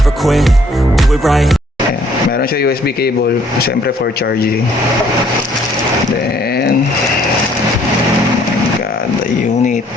quit, do it right. Ayan. Meron siya USB cable, syempre for charging. Then, oh my god, the unit.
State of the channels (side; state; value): both; normal; correlation 0.62